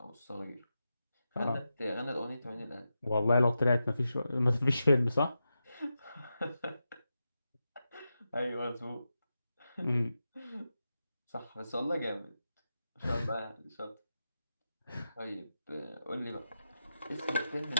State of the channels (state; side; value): inverted; both; correlation -0.89